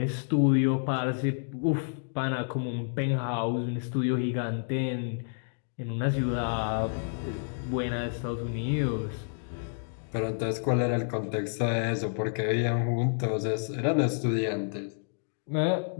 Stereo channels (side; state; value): right; silent; digital silence